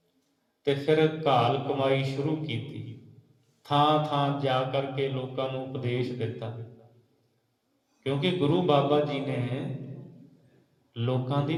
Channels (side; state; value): both; identical; correlation 1.00